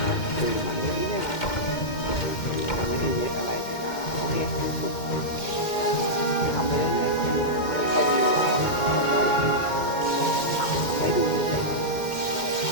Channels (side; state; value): right; late; 2.1 ms